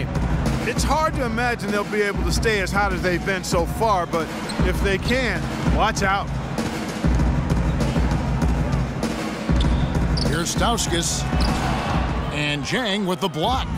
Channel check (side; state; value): both; identical; correlation 1.00